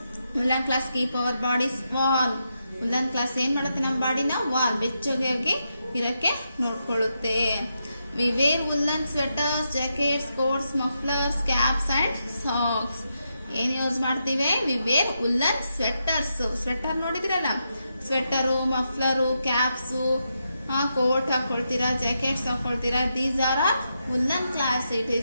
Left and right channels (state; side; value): inverted; both; correlation -0.84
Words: Woollen clothes keep our bodies warm. Woollen clothes ಏನ್ ಮಾಡುತ್ತೆ? ನಮ್ಮ ಬಾಡಿನ ವಾರ್ಮ್, ಬೆಚ್ಚಗಾಗಿ ಇರಕ್ಕೆ ನೋಡ್ಕೊಳ್ಳುತ್ತೆ. We wear woollen sweaters, jackets, coats, mufflers, caps and socks. ಏನ್ ಯೂಸ್ ಮಾಡ್ತೀವಿ? We wear woollen sweaters. Sweater ನೋಡಿದ್ರಲ್ಲ, ಸ್ವೆಟರು, ಮಫ್ಲರು, ಕ್ಯಾಪ್ಸು, ಕೋಟ್ ಹಾಕೊಳ್ತೀರಾ, ಜಾಕೆಟ್ಸ್ ಹಾಕೊಳ್ತೀರಾ. These are woollen clothes. It